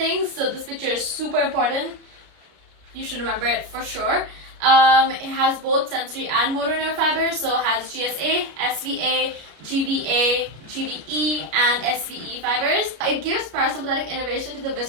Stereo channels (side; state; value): left; late; 33 ms